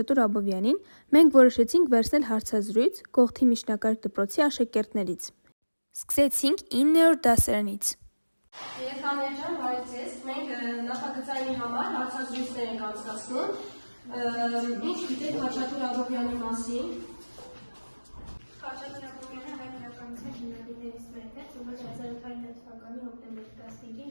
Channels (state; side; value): inverted; both; correlation -1.00